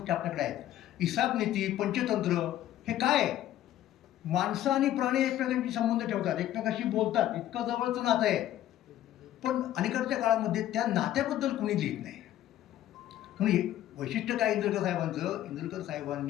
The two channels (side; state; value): right; quieter; 12.8 dB